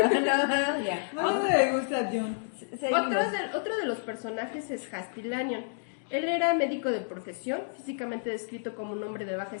ya. Bueno, me gusta John. Seguimos. Otro de los personajes es Hasty Lanyon. Él era médico de profesión, físicamente descrito como un hombre de baja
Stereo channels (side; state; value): right; silent; digital silence